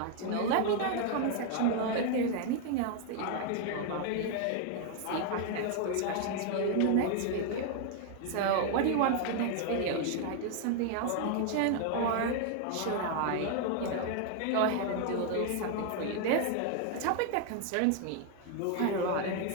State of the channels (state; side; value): different; both; correlation 0.00